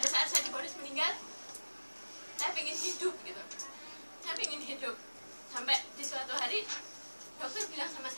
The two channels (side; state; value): both; inverted; correlation -1.00